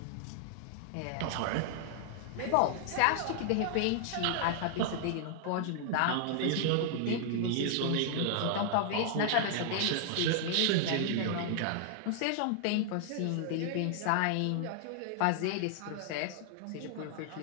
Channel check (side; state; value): both; different; correlation -0.01